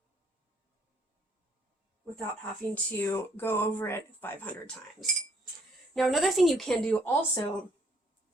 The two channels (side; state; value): both; normal; correlation 0.66